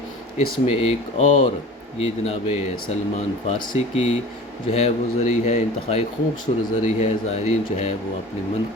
اس میں ایک اور یہ جناب سلمان فارسی کی جو ہے وہ زری ہے، انتہائی خوبصورت زری ہے، زائرین جو ہے وہ اپنی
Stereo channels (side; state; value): both; normal; correlation 0.39